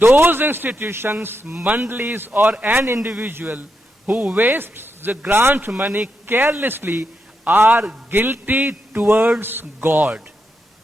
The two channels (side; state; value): both; normal; correlation 0.84